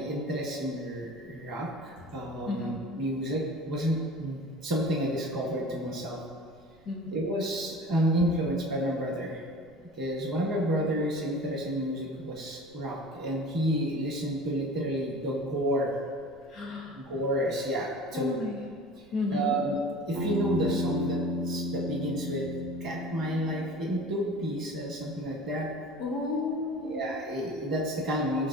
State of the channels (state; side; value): noise; right; rumble, 29 dB below the sound